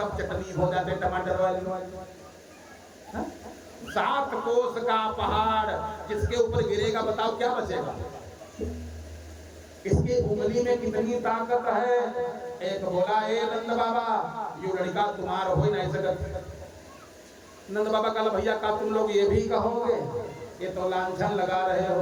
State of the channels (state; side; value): identical; both; correlation 1.00